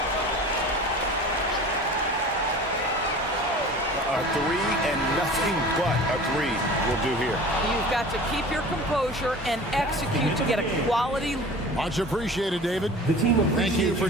A 3 and nothing but a 3 will do here. You've got to keep your composure and execute to get a quality. Much appreciated, David. The team Thank you for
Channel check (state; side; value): normal; both; correlation 0.40